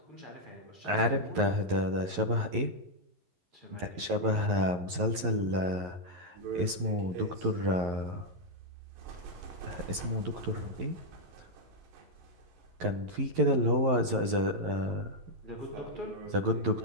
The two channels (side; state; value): left; late; 11 ms